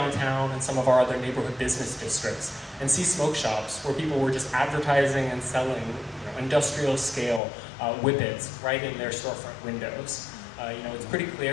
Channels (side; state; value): right; drops out; at 7.4 s